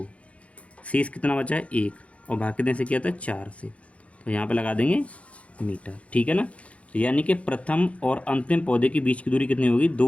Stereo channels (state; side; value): late; right; 0.064 ms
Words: शेष कितना बचा है 1, और भाग कितने से किया था 4 से। तो यहाँ पे लगा देंगे मीटर, ठीक है ना। तो यानी कि प्रथम और अंतिम पौधे के बीच की दूरी कितनी होगी,